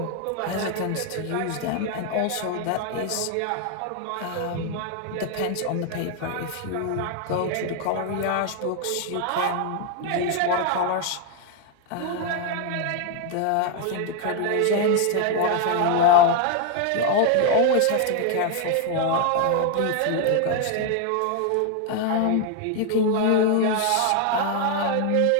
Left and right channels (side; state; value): both; different; correlation 0.01